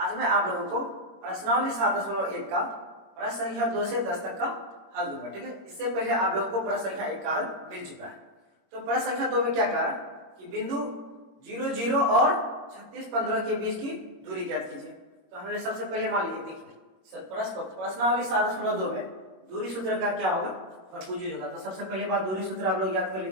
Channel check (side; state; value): left; late; 21 ms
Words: मैं आप लोगों को प्रश्नावली 7.1 का प्रश्न संख्या 2 से 10 तक का हल दूंगा। ठीक है, इससे पहले आप लोगों को प्रश्न संख्या 1 का हल मिल चुका है। तो प्रश्न संख्या 2 में क्या कहा कि बिंदु 0 0 और 36 15 के बीच की दूरी ज्ञात कीजिए। तो हमने सबसे पहले मान लीजिए, देखिए प्रश्नावली 7.2 में दूरी सूत्र का क्या होगा, भरपूर यूज होगा। तो सबसे पहले बात दूरी सूत्र आप लोग याद कर